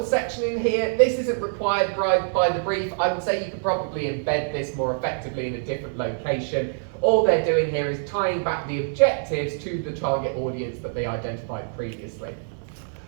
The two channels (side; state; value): left; silent; 62 dB below the other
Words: section in here. This isn't required by the brief. I would say you could probably embed this more effectively in a different location. All they're doing here is tying back the objectives to the target audience that they identified previously.